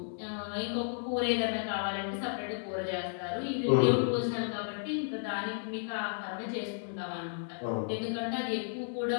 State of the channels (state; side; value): silent; right; digital silence